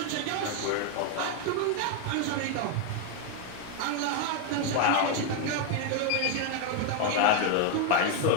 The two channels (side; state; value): both; different; correlation 0.01